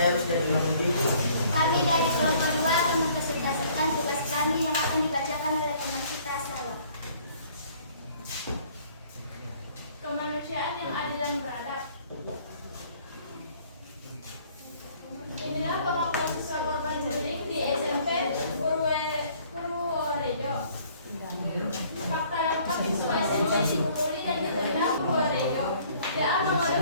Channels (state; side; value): inverted; both; correlation -0.58